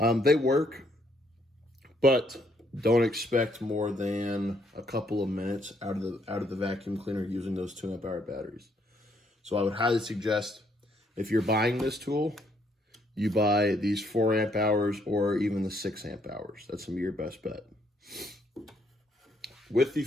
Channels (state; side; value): normal; both; correlation 0.70